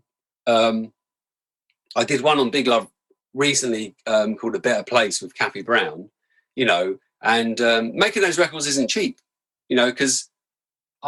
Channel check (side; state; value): both; identical; correlation 1.00